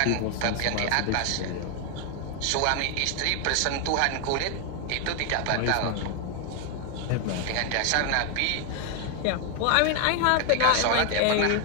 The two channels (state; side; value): different; both; correlation 0.01